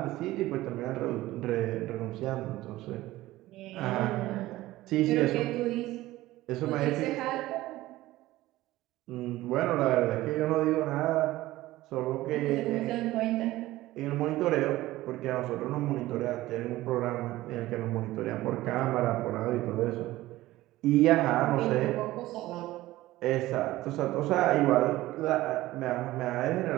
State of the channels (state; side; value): quieter; left; 16.9 dB